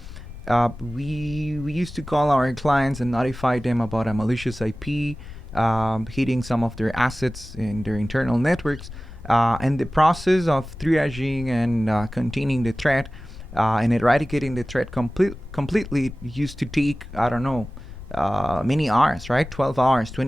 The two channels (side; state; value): left; noise; rumble, 14 dB below the sound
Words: we used to call our clients and notify them about a malicious IP hitting some of their assets in their internal networks. And the process of triaging and containing the threat and eradicating the threat completely used to take, I don't know, many hours, right? 12 hours,